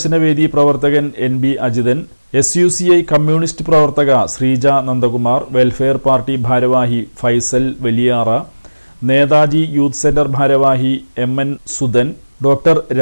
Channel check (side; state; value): both; inverted; correlation -1.00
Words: പ്രവർത്തകൻ NB അജിതൻ, SUCI കമ്മ്യൂണിസ്റ്റ് പ്രവർത്തക ശ്രീജ നന്ദകുമാർ, വെൽഫെയർ പാർട്ടി ഭാരവാഹി ഫൈസൽ വലിയാറ, നേതാജി യൂത്ത് സെന്റർ ഭാരവാഹി MN സുധൻ, ഡോക്ടർ